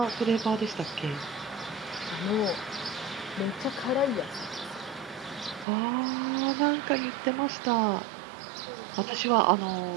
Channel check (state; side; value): drops out; left; at 5.7 s